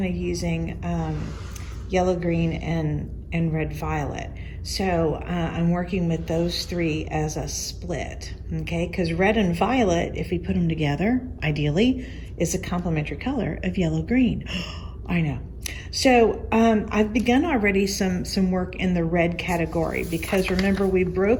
of using yellow, green, and red, violet. So I'm working with those three as a split, okay? Because red and violet, if we put them together, ideally, is a complementary color of yellow, green. I know. So I've begun already some work in the red category, because remember, we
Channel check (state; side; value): identical; both; correlation 1.00